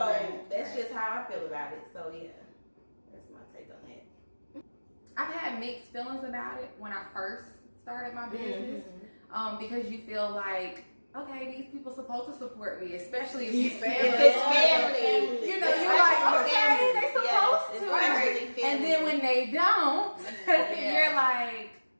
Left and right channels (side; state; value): both; inverted; correlation -1.00